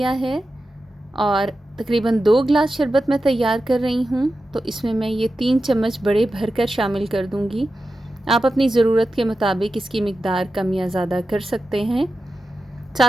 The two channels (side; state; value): both; normal; correlation 0.92